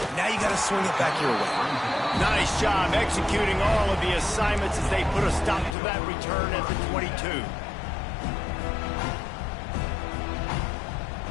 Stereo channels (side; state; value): right; drops out; at 5.8 s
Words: Now you got to swing it back your way. Nice job executing all of the assignments as they put a stop to that return at the 22.